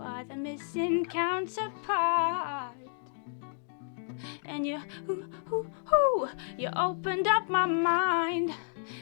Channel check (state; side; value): silent; right; 57 dB below the other